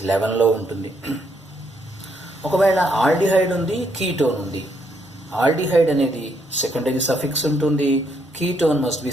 11లో ఉంటుంది. ఒకవేళ ఆల్డిహైడ్ ఉంది, కీటోన్ ఉంది, ఆల్డిహైడ్ అనేది సెకండరీ సఫిక్స్ ఉంటుంది, ketone must be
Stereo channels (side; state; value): both; normal; correlation 0.74